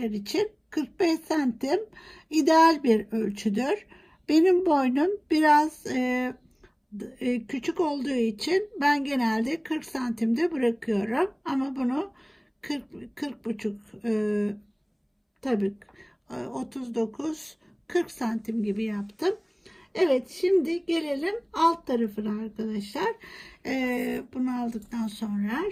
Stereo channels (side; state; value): both; identical; correlation 1.00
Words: için 45 santim ideal bir ölçüdür. Benim boynum biraz küçük olduğu için ben genelde 40 santimde bırakıyorum. Ama bunu 40 buçuk tabii 39-40 santim gibi yaptım. Evet, şimdi gelelim alt tarafına arkadaşlar. Bunu aldıktan sonra